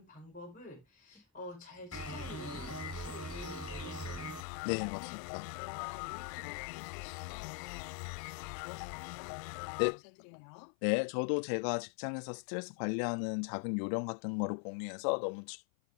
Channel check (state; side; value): drops out; right; at 4.4 s